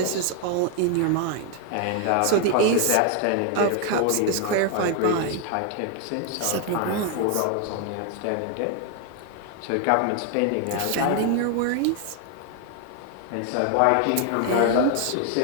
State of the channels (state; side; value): different; both; correlation 0.00